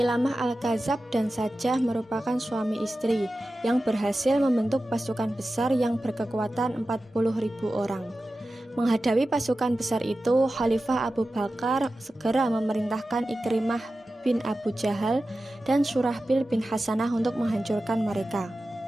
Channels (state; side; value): normal; both; correlation 0.94